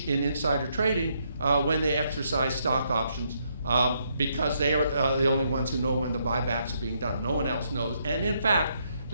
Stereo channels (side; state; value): both; inverted; correlation -0.75